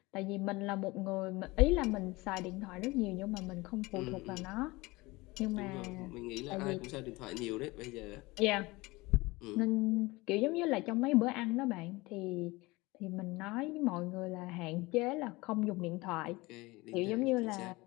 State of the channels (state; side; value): quieter; right; 22.2 dB